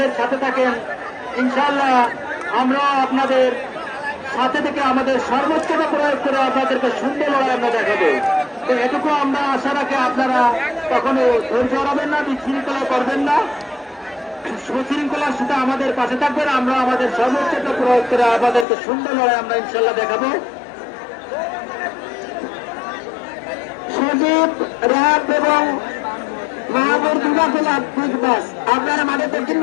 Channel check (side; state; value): right; drops out; at 18.7 s